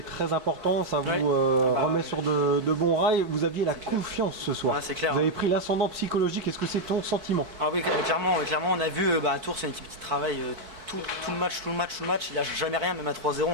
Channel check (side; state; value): left; late; 4.6 ms